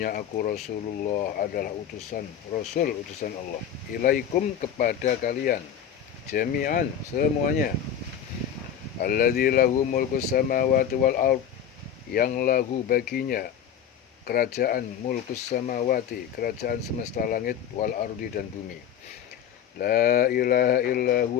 aku Rasulullah adalah Rasul utusan Allah. Ilaikum kepada kalian, jami'an semuanya. Alladzi lahu mulkus samawati wal ard, yang lahu baginya kerajaan mulkus samawati, kerajaan semesta langit, wal ardi dan bumi. La ilaha illa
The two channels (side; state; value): right; quieter; 8.9 dB